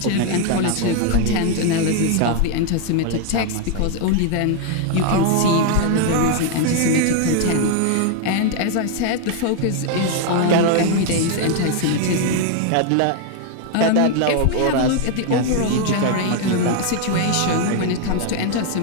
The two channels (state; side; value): different; both; correlation 0.00